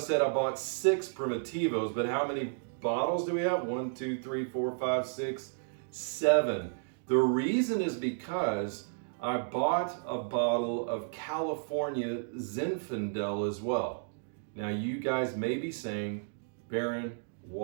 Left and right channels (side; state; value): left; silent; digital silence